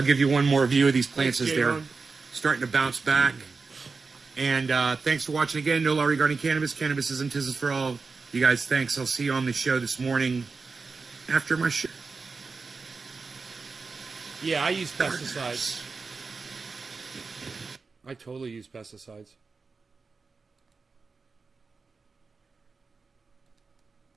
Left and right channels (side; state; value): left; quieter; 4.4 dB